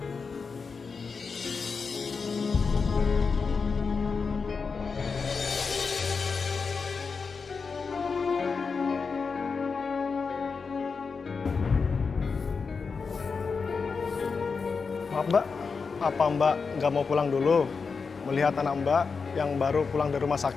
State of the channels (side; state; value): right; quieter; 5.1 dB